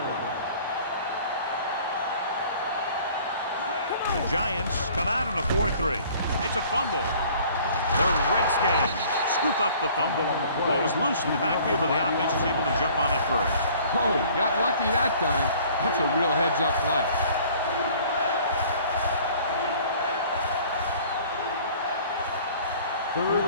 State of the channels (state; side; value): inverted; both; correlation -0.52